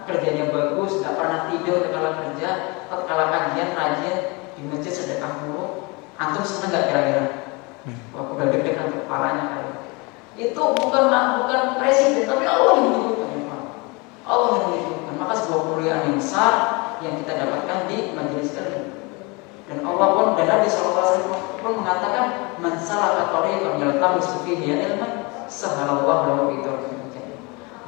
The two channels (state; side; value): quieter; right; 27.7 dB